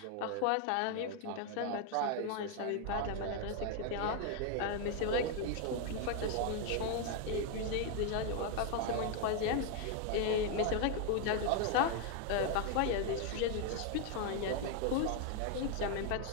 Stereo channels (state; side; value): different; both; correlation 0.00